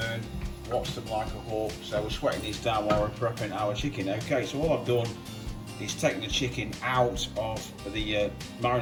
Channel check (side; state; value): both; identical; correlation 1.00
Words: Watch them like a hawk. So we're sweating these down while we're prepping our chicken. Okay, so all I've done is taken the chicken out of the